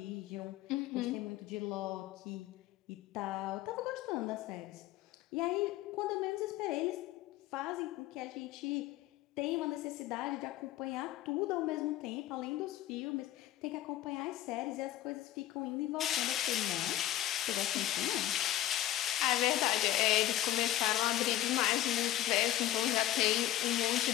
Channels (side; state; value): right; quieter; 13.7 dB